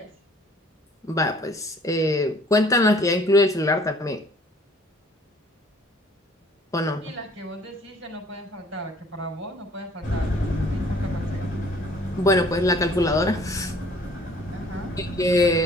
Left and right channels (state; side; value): normal; both; correlation 0.55